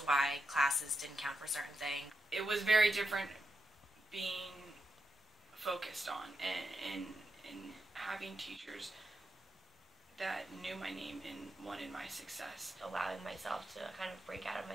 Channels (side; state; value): both; normal; correlation 0.85